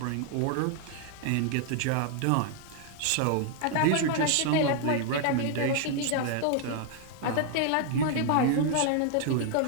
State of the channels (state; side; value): different; both; correlation 0.00